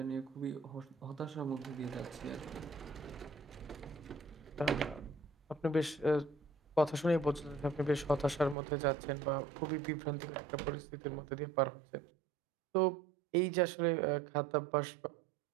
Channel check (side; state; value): left; drops out; at 8.6 s